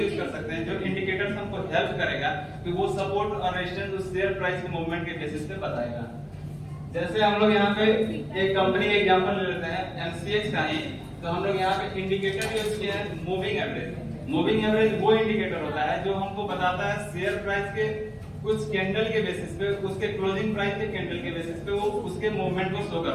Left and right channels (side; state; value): both; identical; correlation 1.00